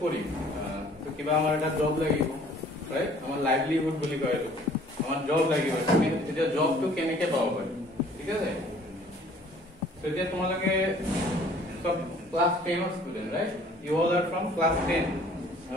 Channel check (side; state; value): both; normal; correlation 0.54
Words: কৰিম তো কিবা আমাৰ এটা জব লাগিব ৰাইট আমাৰ লাইভলিহুড বুলি কয় এইটো আমাৰ জব লাগিব তুমি এতিয়া জবটো কেনেকৈ পাব পাৰিম ঠিক আছে তো এতিয়া তোমালোকে সব ক্লাস 10 ৰ student right you all are from class 10